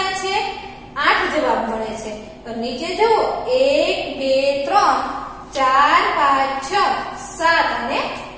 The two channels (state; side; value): identical; both; correlation 1.00